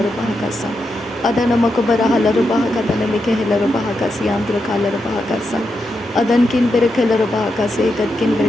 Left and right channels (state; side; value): normal; both; correlation 0.85